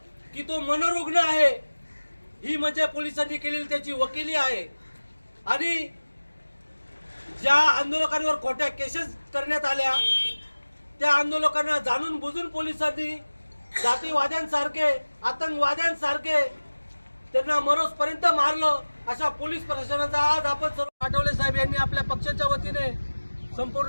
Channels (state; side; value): inverted; both; correlation -1.00